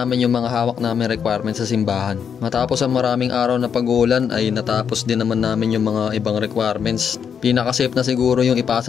yung mga hawak namin requirements sa simbahan. Matapos ang maraming araw na pag-uulan ay natapos din naman namin yung mga ibang requirements. Pinaka-safe na siguro yung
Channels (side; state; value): right; quieter; 7.3 dB